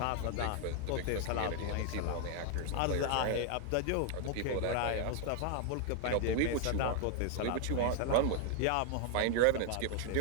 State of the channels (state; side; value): different; both; correlation 0.00